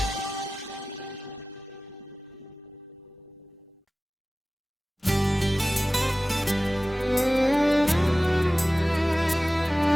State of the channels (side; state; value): both; normal; correlation 0.97